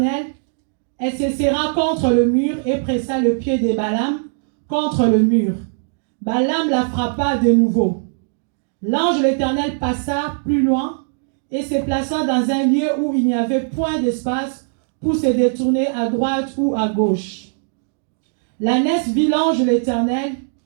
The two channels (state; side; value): silent; left; digital silence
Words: Elle se serra contre le mur et pressa le pied de Balaam contre le mur. Balaam la frappa de nouveau. L'ange de l'Éternel passa plus loin et se plaça dans un lieu où il n'y avait point d'espace pour se détourner à droite ou à gauche. L'ânesse vit l'ange de l'Éternel